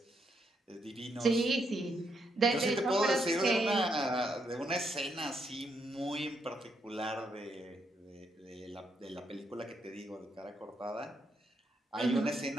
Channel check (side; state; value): both; normal; correlation 0.77